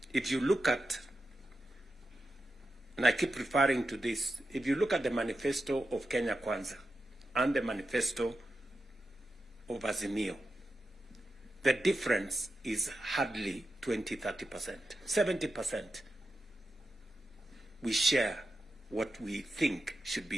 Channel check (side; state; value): both; normal; correlation 0.89